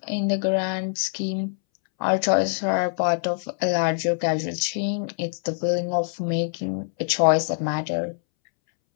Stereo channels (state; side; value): silent; right; 62 dB below the other